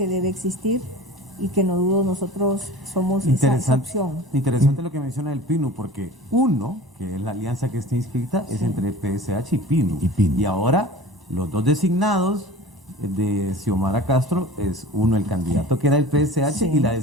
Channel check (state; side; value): normal; both; correlation 0.39